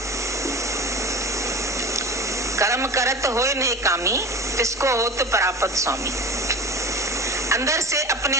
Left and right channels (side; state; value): both; normal; correlation 0.33